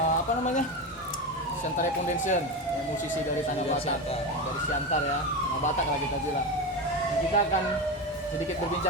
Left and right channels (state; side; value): normal; both; correlation 0.19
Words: Apa namanya? Siantare Foundation, ya, musisi dari Tanah Batak, dari Siantar ya, Tanah Batak lah kita bilang. Dan kita akan sedikit